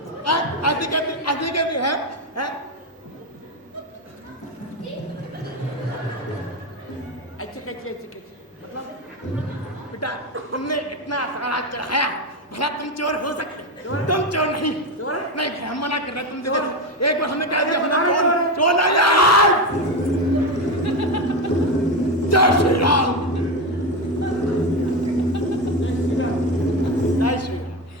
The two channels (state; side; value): normal; both; correlation 0.15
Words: आदि के भी है? ऐसे कैसे बेटा तुमने इतना सारा चढ़ाया, भला तुम चोर हो सकते? तुम चोर नहीं। नहीं हम मना कर रहे, तुम देखो एक बार हमने कह दिया चोर चोर नहीं यार। जय श्री राम। जय श्री राम।